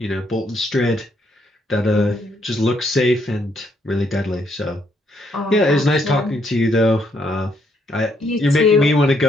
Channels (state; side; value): normal; both; correlation 0.72